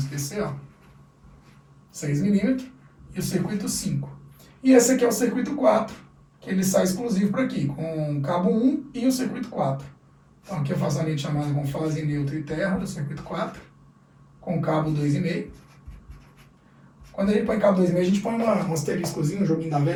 ó. 6 milímetros, e o circuito 5. E esse aqui é o circuito 4, que ele sai exclusivo para aqui, com cabo 1 e o circuito 4. Então aqui eu faço a linha de chamada com fase, neutro e terra do circuito 4, com cabo 2,5. Quando a gente põe cabo 2,5, a gente põe um asteriscozinho, um joguinho da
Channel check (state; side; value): identical; both; correlation 1.00